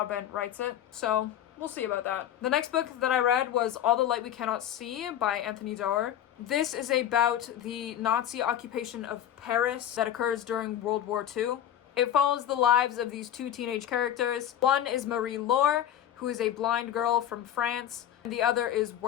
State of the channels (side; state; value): right; quieter; 10.9 dB